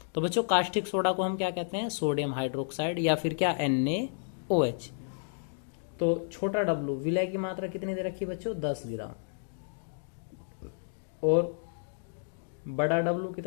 तो बच्चों कास्टिक सोडा को हम क्या कहते हैं, सोडियम हाइड्रोक्साइड या फिर क्या NaOH। तो छोटा W विलय की मात्रा कितनी दे रखी बच्चों 10 ग्राम, और बड़ा W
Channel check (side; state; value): right; silent; digital silence